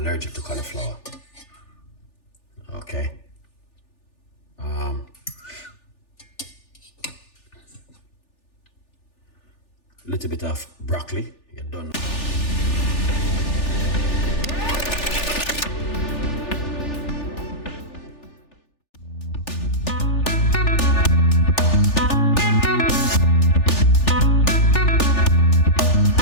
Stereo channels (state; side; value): late; right; 3.4 ms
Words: to cauliflower. Okay. Little bit of broccoli. You're done.